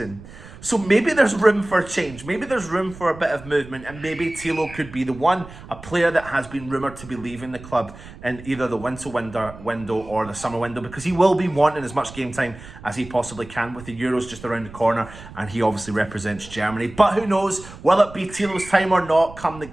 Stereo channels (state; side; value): noise; right; rumble, 17 dB below the sound